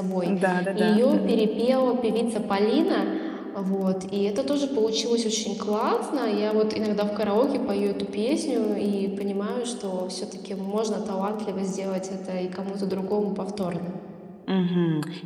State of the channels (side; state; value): both; identical; correlation 1.00